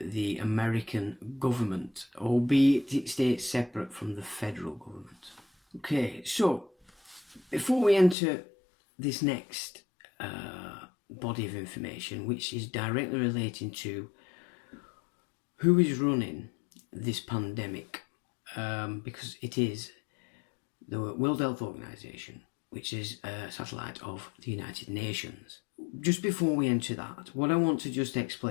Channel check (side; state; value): right; drops out; at 8.2 s